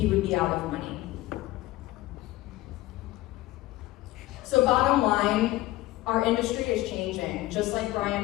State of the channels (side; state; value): right; quieter; 17.4 dB